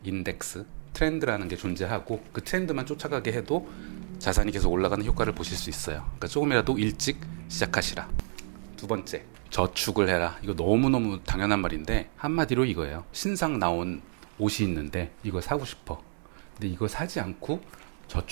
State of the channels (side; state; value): left; silent; digital silence